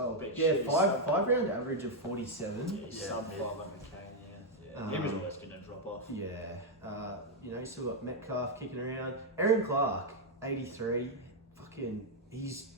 been Yeah, shit. five round average of 47. Yeah, he's Yeah, sub yeah. 5 on McCain, yeah. He was always going to drop off. Yeah, you know, you still got Metcalf kicking around. Aaron Clark, 83. Fucking, he's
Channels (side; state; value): both; normal; correlation 0.00